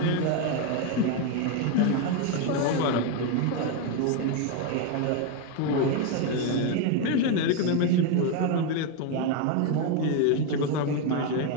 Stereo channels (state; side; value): different; both; correlation 0.01